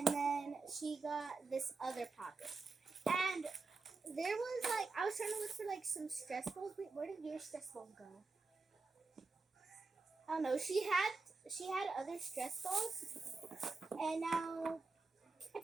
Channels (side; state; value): left; quieter; 3.9 dB